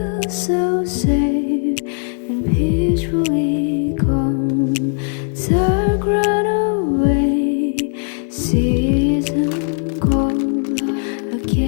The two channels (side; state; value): right; silent; 55 dB below the other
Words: so safe and peacefully calm. Dark run away, season cold